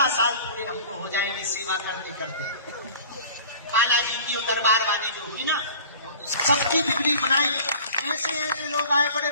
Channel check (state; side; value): inverted; both; correlation -0.45